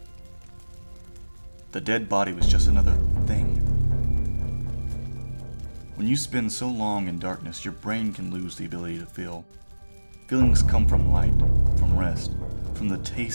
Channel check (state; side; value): inverted; both; correlation -1.00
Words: The dead body was just another thing. When you spend so long in darkness, your brain can lose the ability to feel. Feelings come from light, from rest, from the